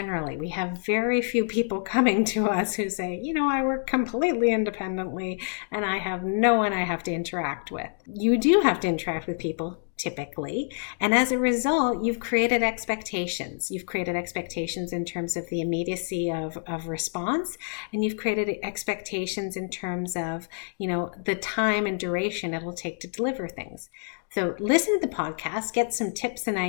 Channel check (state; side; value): silent; right; digital silence